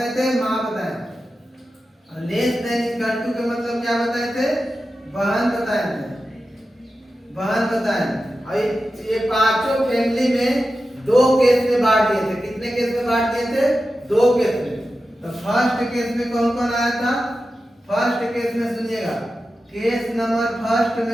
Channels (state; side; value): normal; both; correlation 0.92